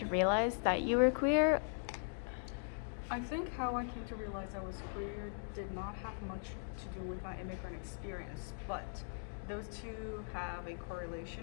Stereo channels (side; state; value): right; silent; digital silence